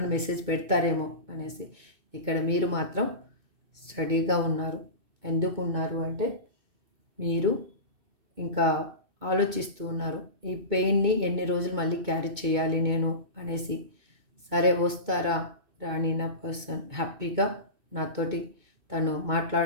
మెసేజ్ పెడతారేమో అనేసి. ఇక్కడ మీరు మాత్రం స్టడీగా ఉన్నారు. ఎందుకు ఉన్నారు అంటే మీరు ఇంకా ఆలోచిస్తూ ఉన్నారు. ఈ పెయిన్ని ఎన్ని రోజులు మళ్ళీ క్యారీ చేయాలి నేను అనేసి. సరే వస్తారా రాణి నా పర్సన్ హ్యాపీగా నాతోటి తను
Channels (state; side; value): late; left; 2.2 ms